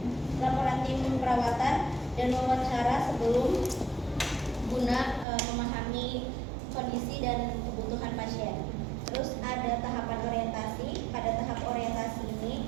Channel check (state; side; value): drops out; left; at 5.2 s